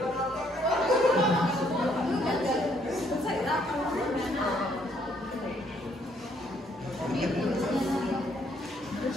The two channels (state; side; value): normal; both; correlation 0.68